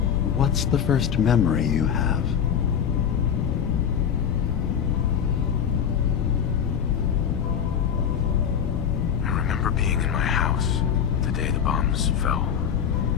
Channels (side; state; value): right; quieter; 8.2 dB